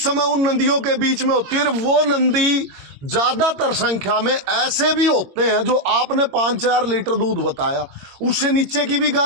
समय उन नंदियों के बीच में होती है। वो नंदी ज्यादातर संख्या में ऐसे भी होते हैं जो आपने 5-4 लीटर दूध बताया, उससे नीचे की भी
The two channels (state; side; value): late; left; 22 ms